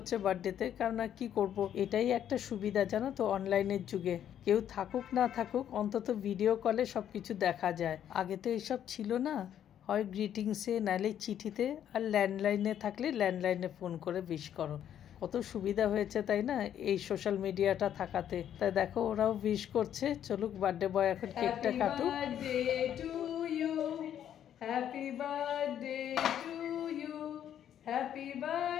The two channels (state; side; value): quieter; right; 10.0 dB